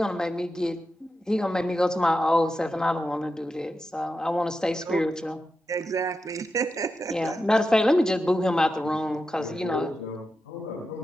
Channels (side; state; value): both; normal; correlation 0.89